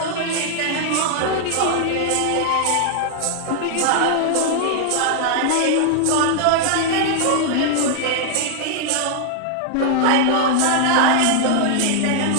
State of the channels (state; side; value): different; both; correlation 0.00